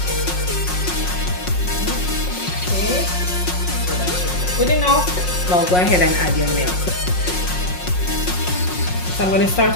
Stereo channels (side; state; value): right; late; 5.5 ms